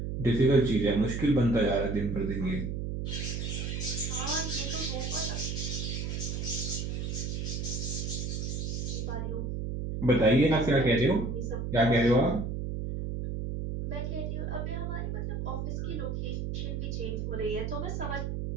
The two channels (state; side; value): noise; right; hum, 3 dB below the sound